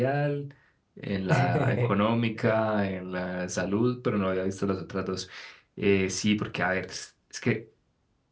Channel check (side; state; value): both; identical; correlation 1.00